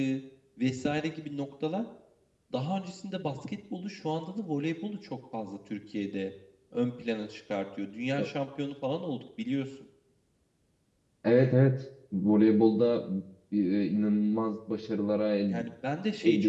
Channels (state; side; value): identical; both; correlation 1.00